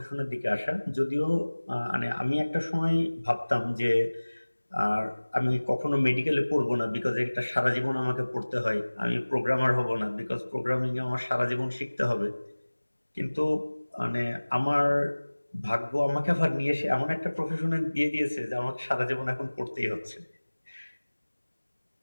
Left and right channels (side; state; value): both; inverted; correlation -1.00